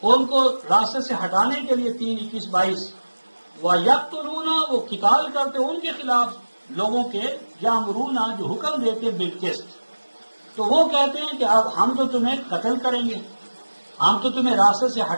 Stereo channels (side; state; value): both; inverted; correlation -1.00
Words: ان کو راستے سے ہٹانے کے لیے 3 21 22 وَيَقْتُلُونَ، وہ قتال کرتے ان کے خلاف لوگوں کے، یامرون جو حکم دیتے بالقسط، تو وہ کہتے ہیں کہ اب ہم تو تمہیں قتل کریں گے، ہم تو تمہیں راستے سے